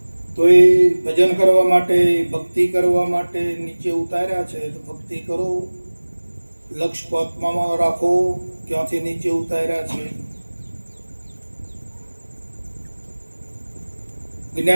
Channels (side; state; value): both; inverted; correlation -1.00